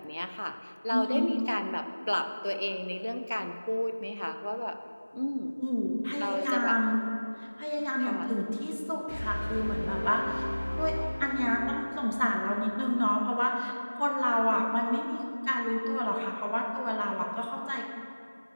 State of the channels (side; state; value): both; inverted; correlation -1.00